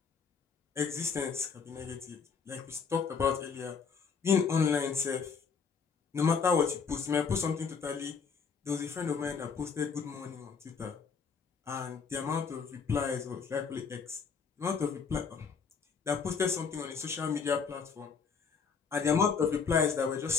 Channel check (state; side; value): quieter; right; 5.8 dB